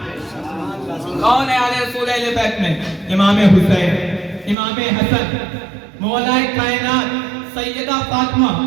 کون ہے آل رسول اہل بیت میں؟ امام حسین، امام حسن، مولا کائنات سیدہ فاطمہ،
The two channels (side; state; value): left; drops out; at 4.5 s